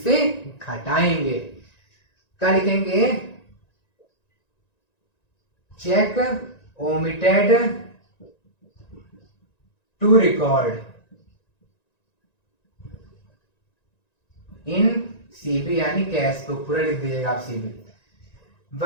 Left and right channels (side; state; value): right; late; 1.9 ms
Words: से घटाएंगे। क्या लिखेंगे, cheque omitted to record in CB, यानी कैश बुक पूरा लिख दीजिएगा आप सीबी